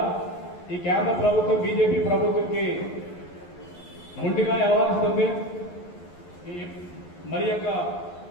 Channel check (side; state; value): right; late; 11 ms